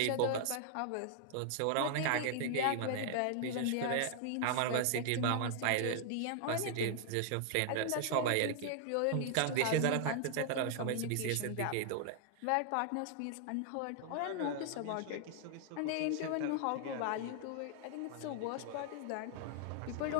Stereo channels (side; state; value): both; different; correlation -0.01